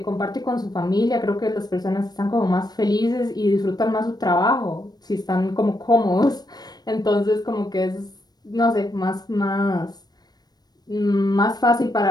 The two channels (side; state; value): right; late; 0.19 ms